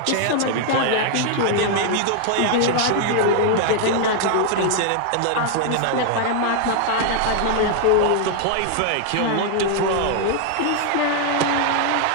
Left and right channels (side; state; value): both; different; correlation 0.00